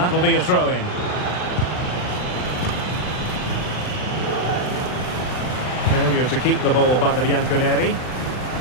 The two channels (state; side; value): late; right; 39 ms